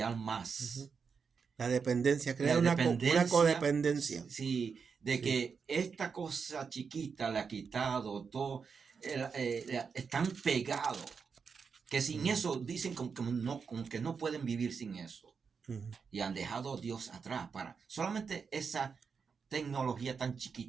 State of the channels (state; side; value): quieter; left; 5.7 dB